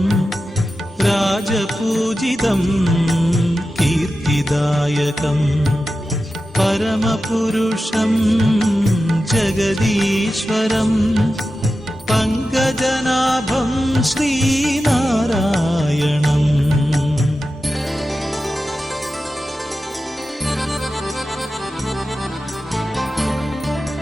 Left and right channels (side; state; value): both; normal; correlation 0.93